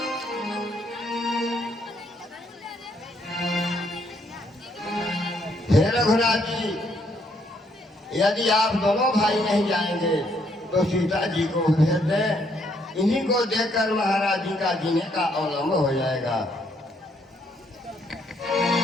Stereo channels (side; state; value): both; normal; correlation 0.71